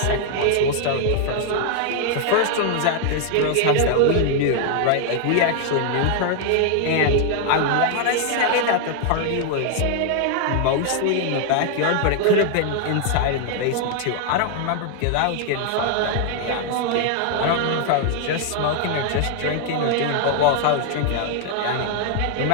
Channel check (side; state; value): both; different; correlation 0.00